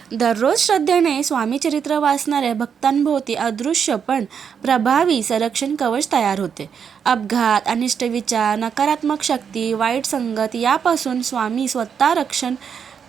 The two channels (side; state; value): left; quieter; 7.2 dB